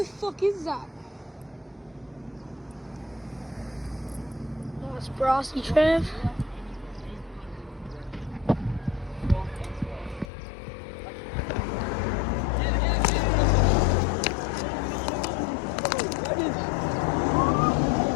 fuck is that? Nice brassy trev.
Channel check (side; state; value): right; drops out; at 10.3 s